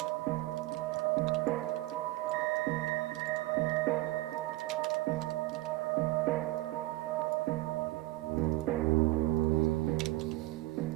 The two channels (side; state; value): left; quieter; 19.3 dB